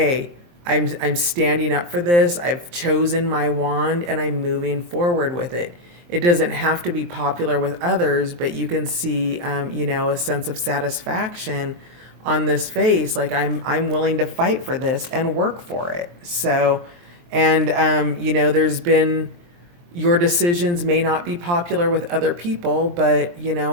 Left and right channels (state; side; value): late; left; 23 ms